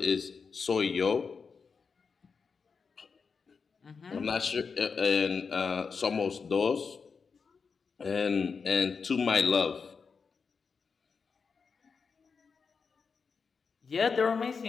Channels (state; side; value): quieter; right; 5.4 dB